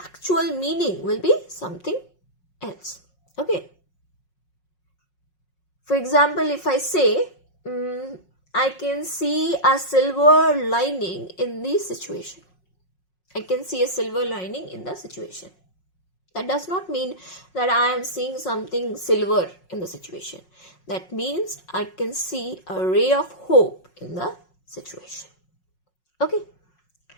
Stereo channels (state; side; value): late; right; 5.5 ms